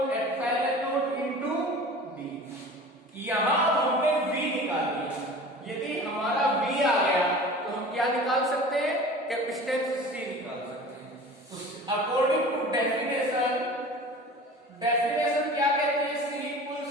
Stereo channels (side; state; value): both; normal; correlation 0.40